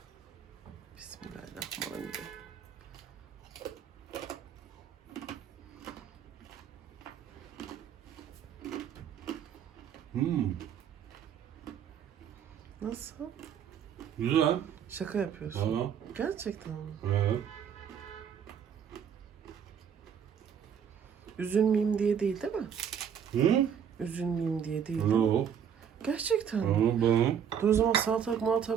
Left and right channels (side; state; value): left; quieter; 8.1 dB